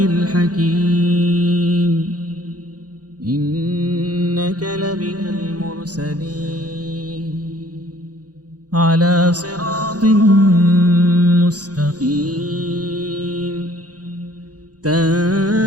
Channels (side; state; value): left; late; 0.68 ms